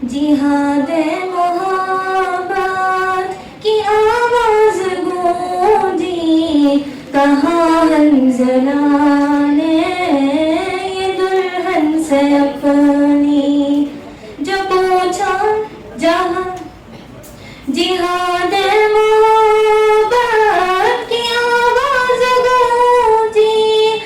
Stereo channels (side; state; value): both; identical; correlation 1.00